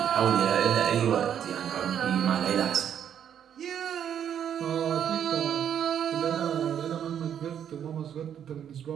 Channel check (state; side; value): quieter; left; 9.1 dB